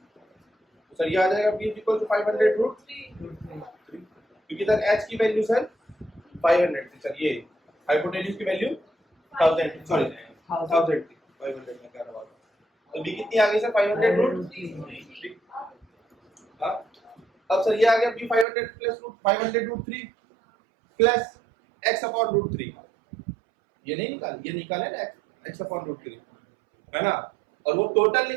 सर ये आ जाएगा b इज इक्वल टू 500 √3, क्योंकि सर h की वैल्यू सर 500 थी सर, ये हाइपोटेन्यूज की वैल्यू 1000, सॉरी 1000 थी, 500 में क्या रहा। तो b कितनी आ गई सर? 500 √3। हाँ, अब सर ये आ गया b 500 plus 500 √3 plus x upon √3। ये नहीं निकाल, ये निकाले ना x अपॉन √3, है ना। और वो टोटल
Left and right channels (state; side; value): drops out; left; at 18.4 s